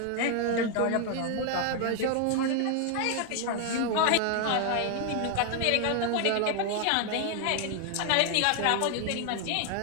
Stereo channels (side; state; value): both; different; correlation 0.00